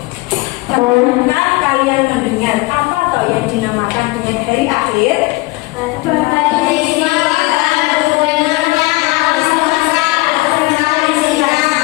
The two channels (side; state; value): right; quieter; 22.4 dB